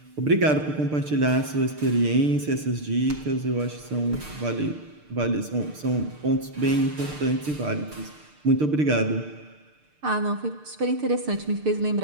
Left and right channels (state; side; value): late; left; 6.6 ms